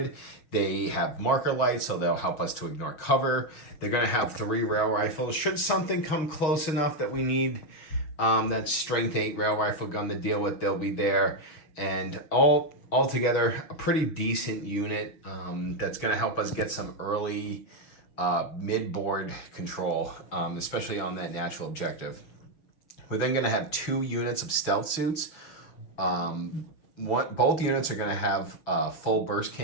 They have marker lights, so they'll help us to ignore cover. They're going to have 3 rail rifles. Should something come close enough that we need that strength 8 rail rifle gun to deal with, they'll be there. And altogether, a pretty decent unit that's going to help us get some early mid-board control, especially on that natural objective. We're then going to have 2 units of stealth suits. Both units are going to have full burst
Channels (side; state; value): right; late; 6.4 ms